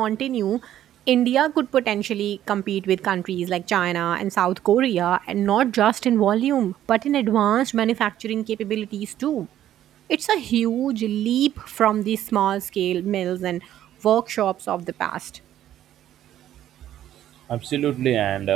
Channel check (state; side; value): quieter; left; 12.0 dB